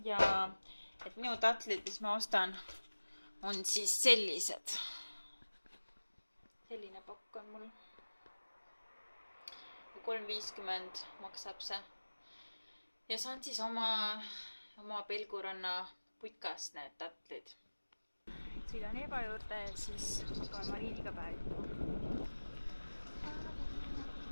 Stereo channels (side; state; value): both; inverted; correlation -1.00